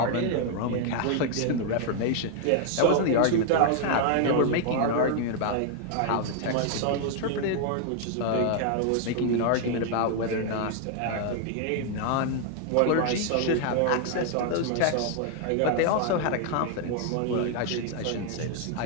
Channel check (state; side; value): different; both; correlation 0.00